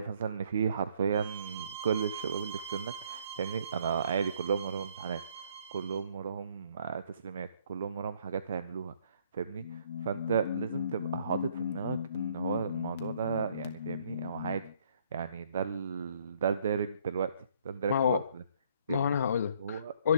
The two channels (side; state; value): both; inverted; correlation -0.64